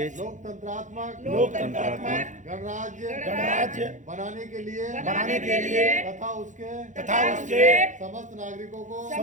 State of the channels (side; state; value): left; late; 0.36 ms